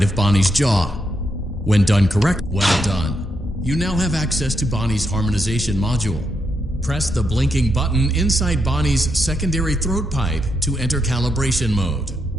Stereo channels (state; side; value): normal; both; correlation 0.81